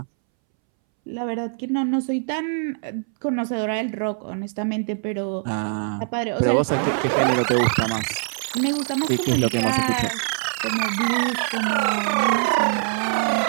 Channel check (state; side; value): silent; left; 63 dB below the other